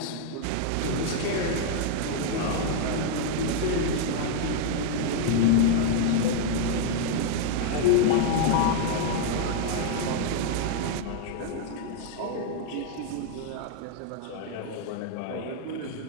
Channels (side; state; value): both; different; correlation 0.00